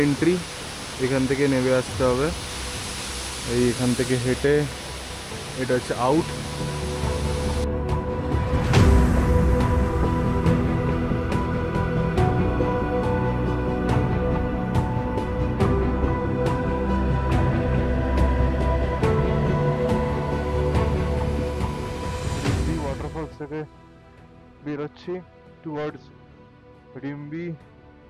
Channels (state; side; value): identical; both; correlation 1.00